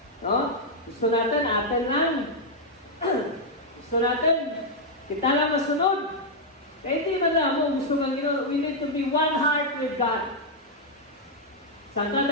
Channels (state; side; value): normal; both; correlation -0.03